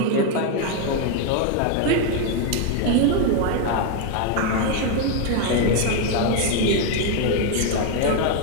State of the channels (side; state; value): both; different; correlation 0.01